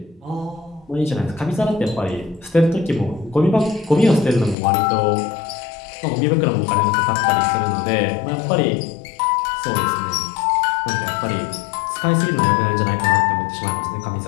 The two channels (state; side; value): drops out; right; at 4.5 s